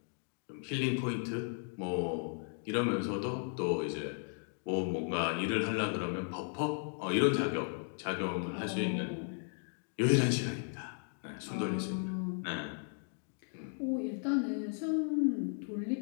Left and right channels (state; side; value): silent; right; 54 dB below the other